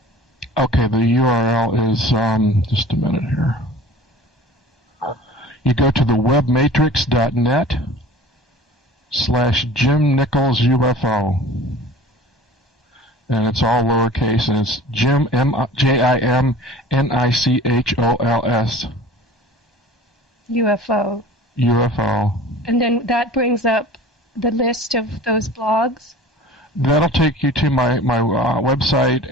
Okay, the URL is, just a minute here. You go to the webmatrix.net/Jim Nichols UFO. And it's all lowercase, and it's Jim, JIMNICHOLS. UFO. UFO. And then that brings up the list of those blogs? That'll take you to my website,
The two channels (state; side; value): normal; both; correlation 0.42